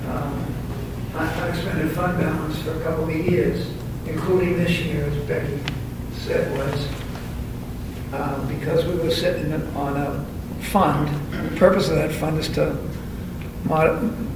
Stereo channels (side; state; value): both; identical; correlation 1.00